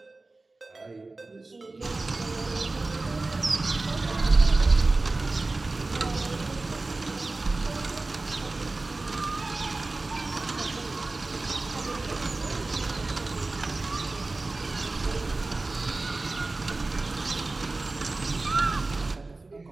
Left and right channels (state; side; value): quieter; left; 3.3 dB